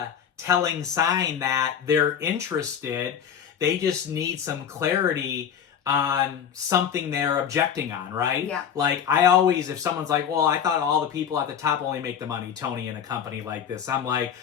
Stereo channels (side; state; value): right; quieter; 8.3 dB